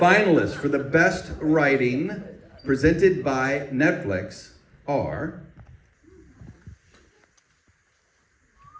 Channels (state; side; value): identical; both; correlation 1.00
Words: for the best writing presented by Netflix are...